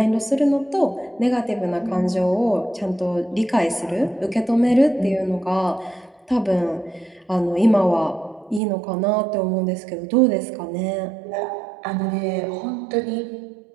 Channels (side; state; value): left; drops out; at 8.6 s